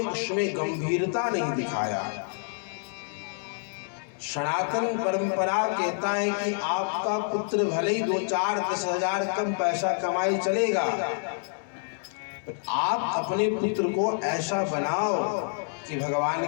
उसमें गंभीरता नहीं दिखाया। सनातन परंपरा कहता है कि आपका पुत्र भले ही 2-4-10,000 कम पैसा कमाए चलेगा, आप अपने पुत्र को ऐसा बनाओ कि भगवान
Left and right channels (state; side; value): silent; right; digital silence